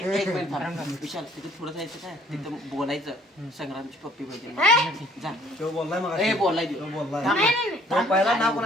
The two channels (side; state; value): both; normal; correlation 0.59